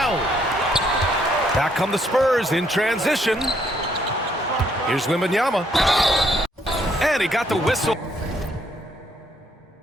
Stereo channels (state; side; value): normal; both; correlation 0.70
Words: Back come the Spurs in transition. Here's Wembanyama. And he got the whistle